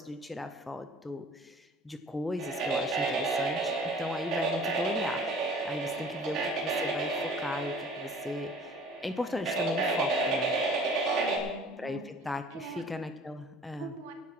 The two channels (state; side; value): normal; both; correlation 0.49